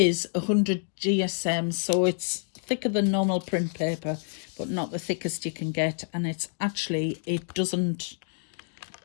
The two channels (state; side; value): silent; right; digital silence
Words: 100 GSM, so it's thicker than normal print paper, but not the thickest you can get. And it's actually, it doesn't,